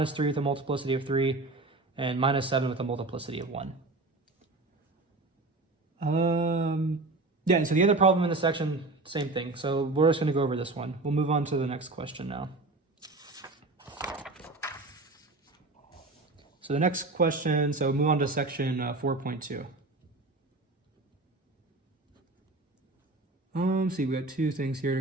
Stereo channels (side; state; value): left; quieter; 3.1 dB